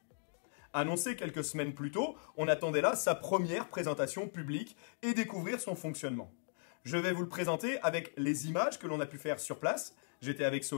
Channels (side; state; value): right; silent; digital silence